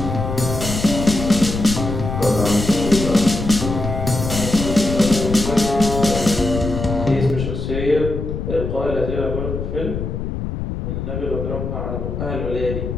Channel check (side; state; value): left; noise; rumble, 4 dB below the sound